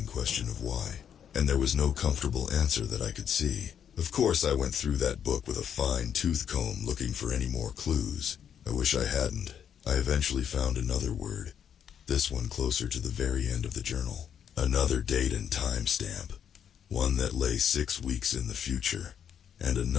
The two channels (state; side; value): quieter; right; 8.6 dB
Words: question of why, and there was no comfortable answer that I could see. Of course I went through that book with a fine tooth comb looking for any more clues. I wish I hadn't. I eventually found another word, this one closer to the very end of the journal. Another date and time stamp, one that lay 6 weeks in the future, and